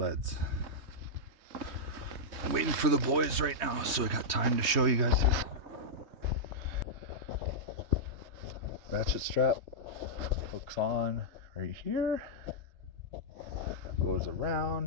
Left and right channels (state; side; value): late; left; 3.3 ms